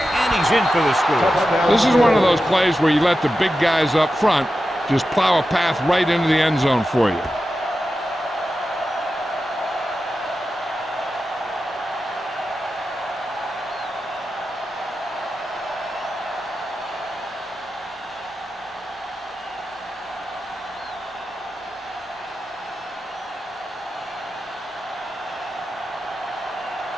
he's in for the score. This is one of those plays where you let the big guys up front just plow a path right into the end zone for you.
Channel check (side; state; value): both; normal; correlation 0.91